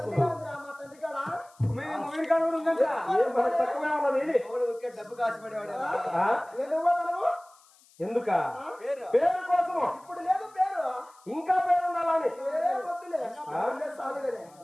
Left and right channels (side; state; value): left; noise; hiss, 29 dB below the sound